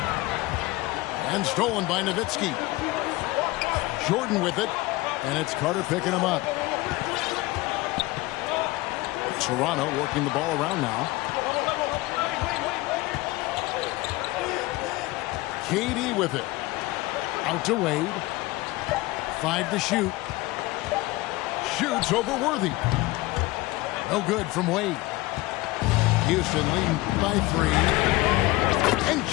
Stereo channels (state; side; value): quieter; right; 20.1 dB